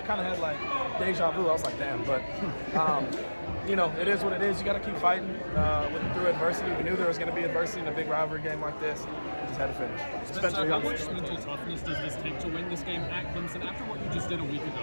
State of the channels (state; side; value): inverted; both; correlation -1.00